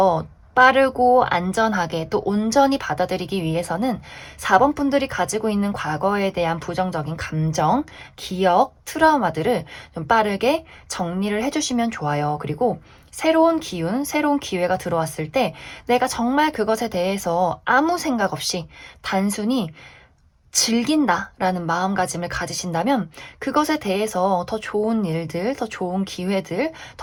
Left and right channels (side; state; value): both; identical; correlation 1.00